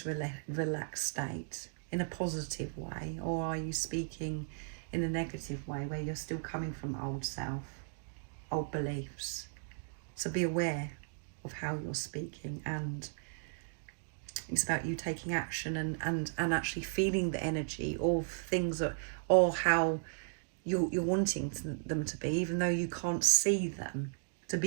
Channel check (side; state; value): left; silent; digital silence